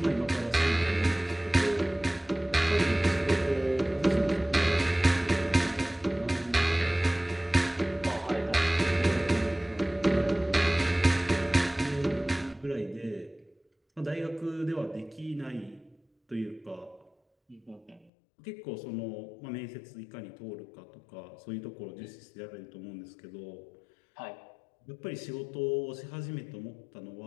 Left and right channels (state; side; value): drops out; right; at 18.1 s